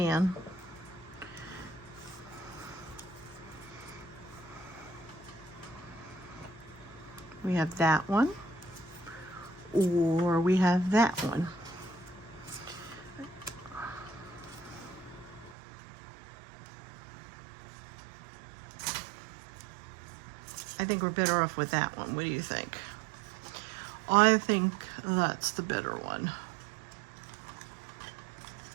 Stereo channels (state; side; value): drops out; left; at 15.6 s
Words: We have that one, or we have that one. I think we're better off with that one. What do you think? I think that's the better one.